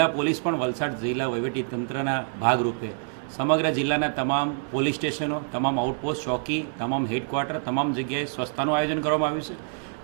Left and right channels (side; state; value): left; silent; 61 dB below the other